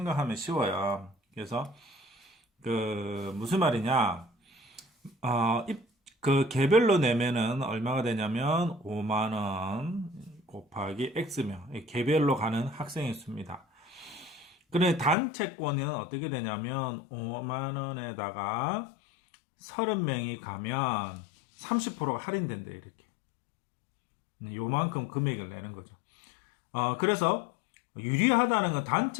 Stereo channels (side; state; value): right; drops out; at 15.2 s